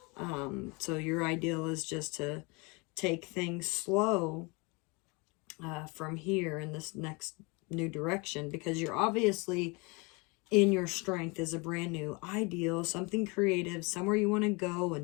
So your ideal is just to take things slow from here in this next new direction, because you're obviously in your strength is a brand new ideal, something creative, somewhere you want to go, a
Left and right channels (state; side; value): quieter; right; 28.5 dB